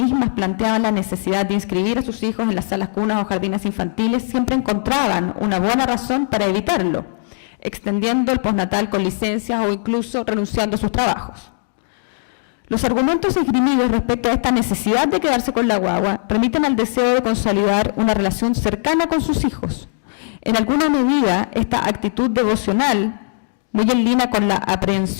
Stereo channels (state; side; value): silent; right; digital silence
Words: planteaban la necesidad de inscribir a sus hijos en las salas cunas o jardines infantiles, siempre encontraban una buena razón para evitarlo, extendiendo el postnatal con licencias o incluso renunciando a sus trabajos. Los argumentos esgrimidos respecto a esta necesidad de quedarse con la guagua remiten al deseo de consolidar una relación cercana con sus hijos. En alguna medida, esta actitud devocional, muy en línea con la